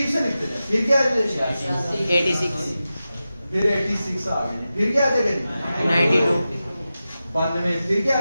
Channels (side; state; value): both; inverted; correlation -0.93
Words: से लिखते हैं। फिर क्या आ जाएगा? 86। फिर 86 आ गए। फिर क्या आ जाएगा जी? 92। 92। फिर क्या आ